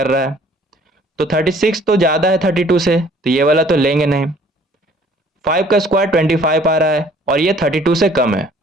रहा है। तो 36 तो ज्यादा है 32 से, तो ये वाला तो लेंगे नहीं। 5 का स्क्वायर 25 आ रहा है और ये 32 से कम है,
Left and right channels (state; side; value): normal; both; correlation 0.56